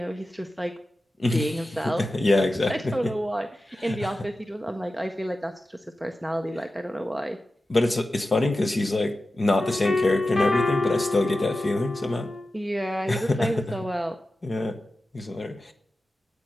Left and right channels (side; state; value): both; normal; correlation 0.93